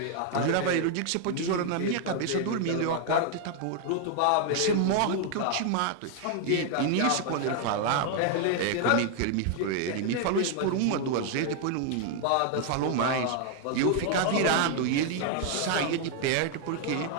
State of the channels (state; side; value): different; both; correlation 0.00